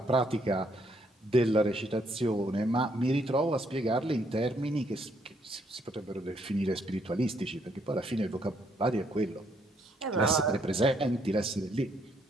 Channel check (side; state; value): both; normal; correlation 0.71